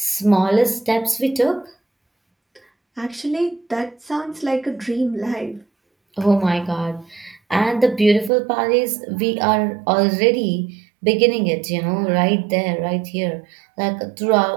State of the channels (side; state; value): left; drops out; at 8.3 s